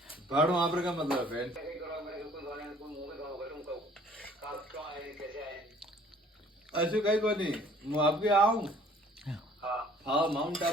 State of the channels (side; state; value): both; normal; correlation 0.56